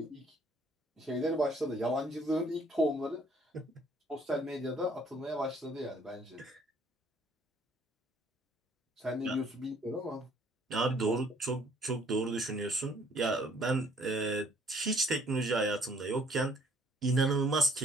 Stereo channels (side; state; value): both; normal; correlation 0.62